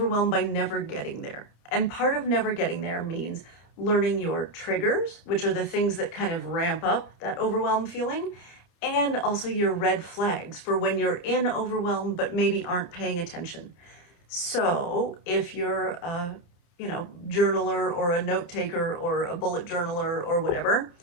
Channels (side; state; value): right; late; 29 ms